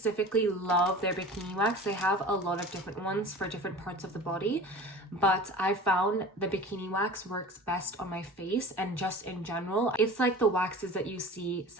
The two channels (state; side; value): normal; both; correlation 0.38